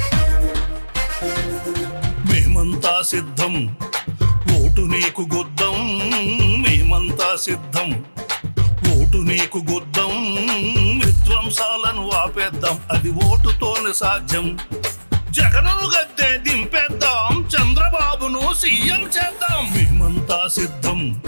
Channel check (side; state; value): both; inverted; correlation -1.00